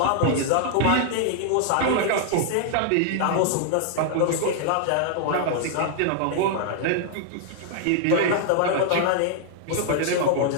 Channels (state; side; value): different; both; correlation 0.00